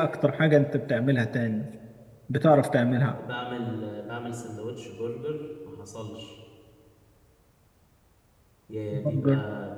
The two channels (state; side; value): identical; both; correlation 1.00